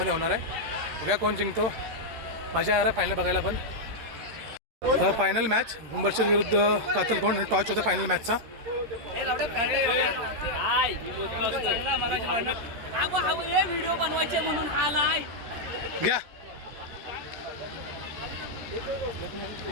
होणार आहे. बघा कोण जिंकतो. मजा येणार आहे फायनल बघायला. पण फायनल मॅच हुंबरशेत विरुद्ध कातलकोंड. टॉच होता फायनल मॅचचा. व्हिडिओ बनवायचे म्हणून आलाय घ्या.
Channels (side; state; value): left; late; 13 ms